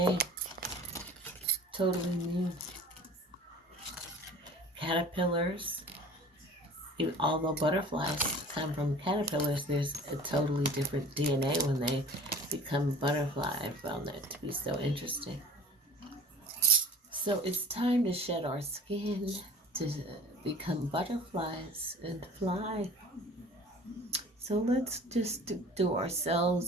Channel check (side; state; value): both; normal; correlation 0.41